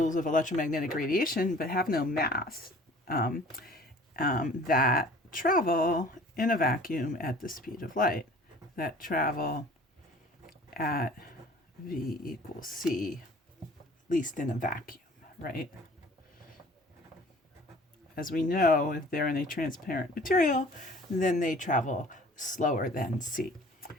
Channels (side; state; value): both; normal; correlation 0.49